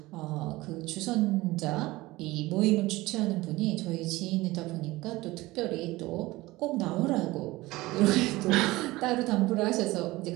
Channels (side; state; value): left; quieter; 19.6 dB